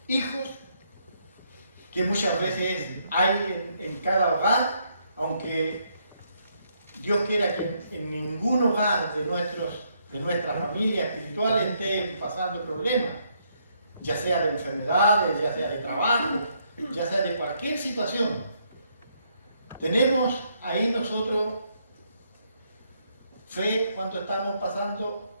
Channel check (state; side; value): inverted; both; correlation -0.73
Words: hijos, que muchas veces hay en cada hogar, aunque Dios quiera que en ningún hogar de nuestra familia espiritual esté pasando problemas, ya sea de enfermedades, ya sea de trabajo, ya sea de cualquier situación. Tenemos ahí nosotros fe cuando estamos pasando